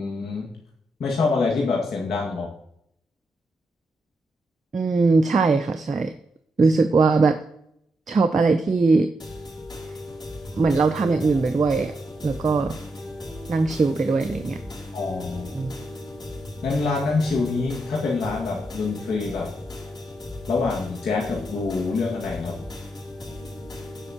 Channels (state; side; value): normal; both; correlation 0.83